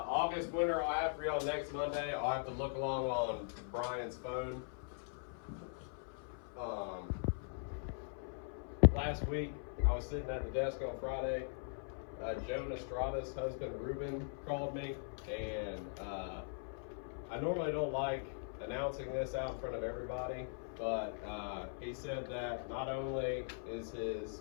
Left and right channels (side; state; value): right; silent; 51 dB below the other